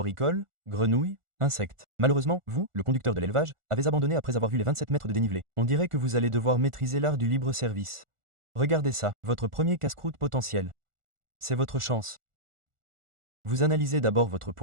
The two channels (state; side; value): late; left; 1.4 ms